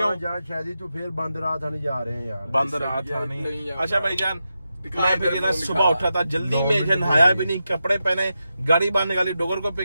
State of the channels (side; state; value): both; inverted; correlation -0.89